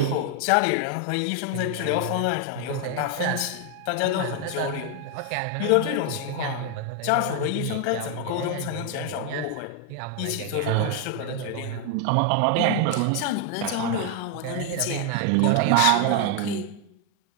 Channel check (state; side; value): different; both; correlation 0.00